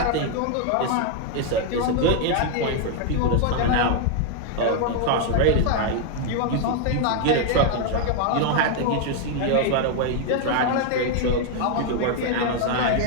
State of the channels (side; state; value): both; different; correlation 0.00